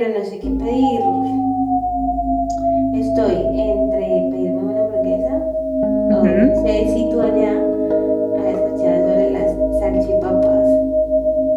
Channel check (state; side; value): identical; both; correlation 1.00